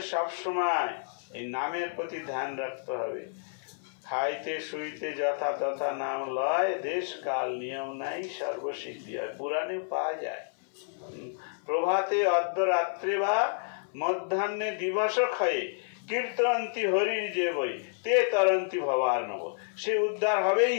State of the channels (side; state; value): right; silent; 58 dB below the other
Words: সব সময় এই নামের প্রতি ধ্যান রাখতে হবে। খাইতে শুইতে যথা তথা নাম লয়, দেশ কাল নিয়ম নাই, সর্বসিদ্ধি হয়। পুরাণে পাওয়া যায়, প্রভাতে অর্ধরাত্রে বা মধ্যাহ্নে দিবস ক্ষয়ে কীর্তন্তি হরির যে বই তে তরন্তি ভবার নব। সে উদ্ধার হবেই